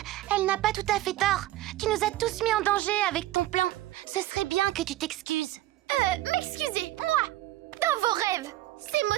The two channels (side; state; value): left; quieter; 15.6 dB